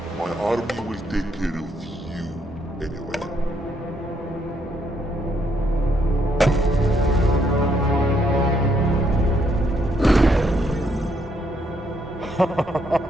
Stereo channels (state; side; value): normal; both; correlation 0.73